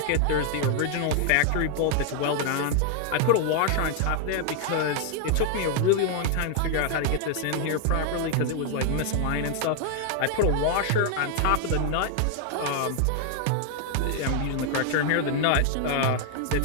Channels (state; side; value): different; both; correlation 0.00